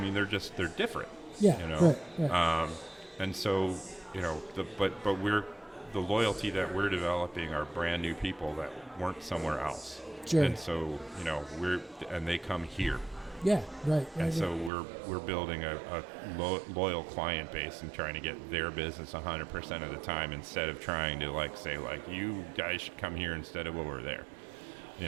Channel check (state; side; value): drops out; left; at 14.7 s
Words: they're different. Yeah, you know, right. And so, you know, but the loyalty that we're developing are brand new people that weren't somewhere else. Sure. And so, you know, they come here. Yeah, right. And so we're building a loyal client base and trying to get their business 100% of the time, instead of trying to like say like, you guys should come here instead of over there.